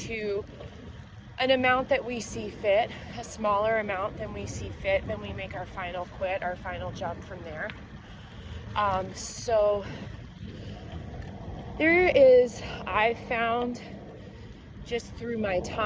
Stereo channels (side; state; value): both; identical; correlation 1.00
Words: an amount that we see fit, a smaller amount than we see fit, then we make our final quit, our final jump from there. So there is, I found just through my